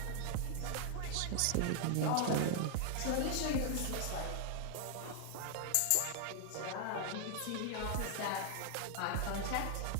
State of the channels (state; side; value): different; both; correlation 0.00